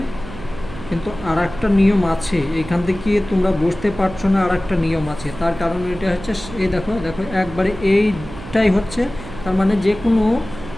কিন্তু আর একটা নিয়ম আছে, এখান থেকে তোমরা বুঝতে পারছো না, আর একটা নিয়ম আছে। তার কারণ এটা হচ্ছে, এই দেখো দেখো একবারে এইটাই হচ্ছে, তার মানে যে কোনো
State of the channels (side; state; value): right; noise; hum, 14 dB below the sound